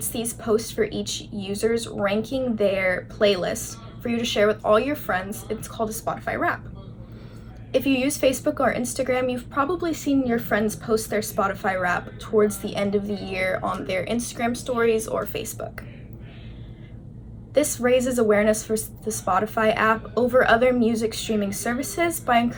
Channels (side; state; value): both; identical; correlation 1.00